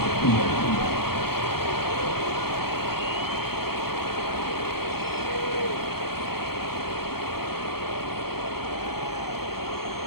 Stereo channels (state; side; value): late; right; 0.95 ms